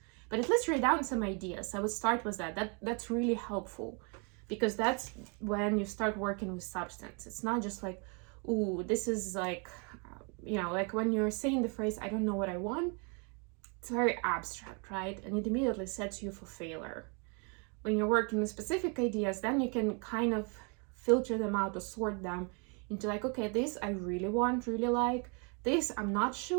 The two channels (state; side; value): quieter; left; 35.2 dB